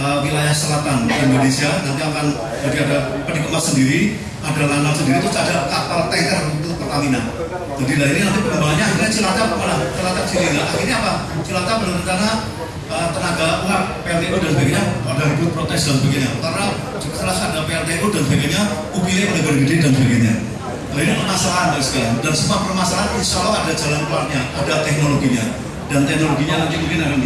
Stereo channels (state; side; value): identical; both; correlation 1.00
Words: wilayah selatan Indonesia. Nanti akan jadi ada peti kemas sendiri, ada lanal sendiri, terus ada kapal tanker untuk Pertamina. Jadi dari ini nanti pengembangannya akhirnya Cilacap malah Cilacap sini. Nah, akhirnya apa? Cilacap berencana tenaga uap PLTU dan sebagainya ada ribut protes dan sebagainya. Karena setelah ada PLTU dan sebagainya, UPI pada gede dan sebagainya. Nah, ini permasalahan sekalian. Dan semua permasalahan insya Allah ada jalan keluarnya, ada teknologinya. Dan teknologinya nanti mungkin akan